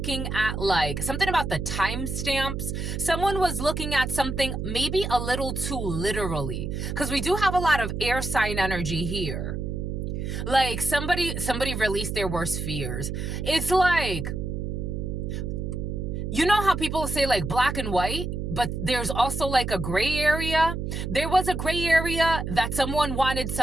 at like something about the timestamps. Someone was looking at something maybe a little too literally, because we do have a lot of air sign energy here. Like somebody released their worst fears. It's like, you know how people say like black and white, but there's also like a gray area? There was a gray area that someone wanted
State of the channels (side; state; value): right; noise; hum, 4 dB below the sound